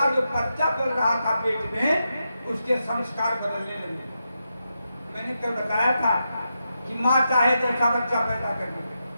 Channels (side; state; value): both; inverted; correlation -0.86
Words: जो बच्चा पल रहा था पेट में उसके संस्कार बदलने लगे। मैंने कल बताया था कि माँ चाहे जैसा बच्चा पैदा कर दे।